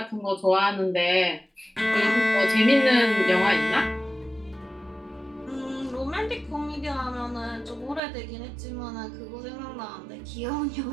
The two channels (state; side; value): drops out; left; at 8.0 s